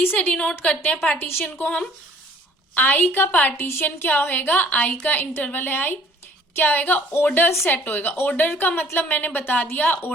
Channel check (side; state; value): both; normal; correlation 0.56